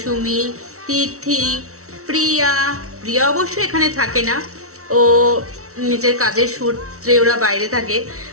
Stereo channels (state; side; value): late; left; 0.64 ms